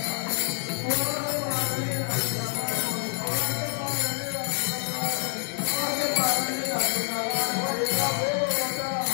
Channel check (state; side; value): silent; right; 60 dB below the other